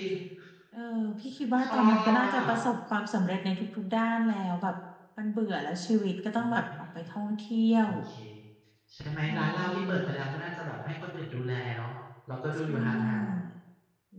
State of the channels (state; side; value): identical; both; correlation 1.00